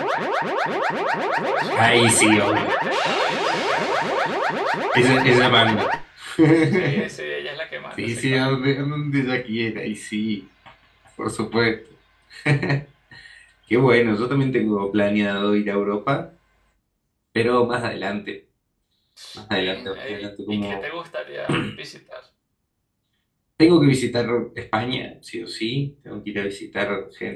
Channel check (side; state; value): both; identical; correlation 1.00